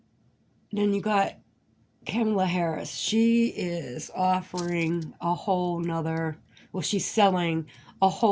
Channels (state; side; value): identical; both; correlation 1.00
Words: Then you got Kamala Harris. She is offering a whole nother, well, she's selling a